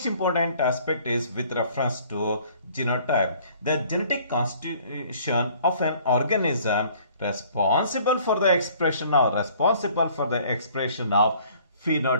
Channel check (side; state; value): both; inverted; correlation -0.56